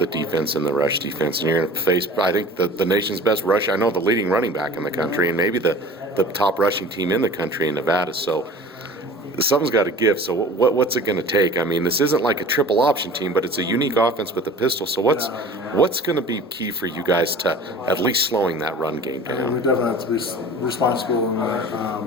defense and the rush defense, and you're going to face, I think, the nation's best rush. I know the leading running back in the country, and maybe the top rushing team in the country in Nevada. So something's got to give. So what's it going to take? I mean, this isn't like a triple option team, but it's a unique offense with the pistol. So what's going to be key for you guys to at least slowing that run game down? We definitely have to be responsible in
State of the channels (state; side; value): normal; both; correlation 0.42